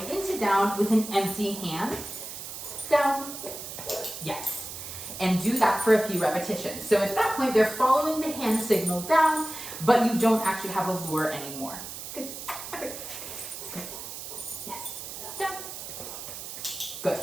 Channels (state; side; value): noise; right; hiss, 9 dB below the sound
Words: into down with an empty hand. Down. Yes. And do that for a few repetitions. So at that point, they're following the hand signal down, but you don't actually have a lure anymore. Good. Okay. Good. Yes. Down. Good.